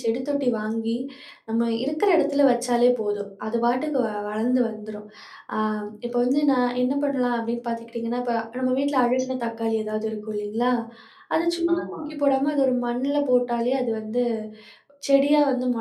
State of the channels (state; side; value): identical; both; correlation 1.00